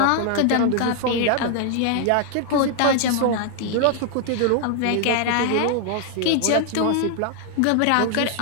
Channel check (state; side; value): different; both; correlation 0.00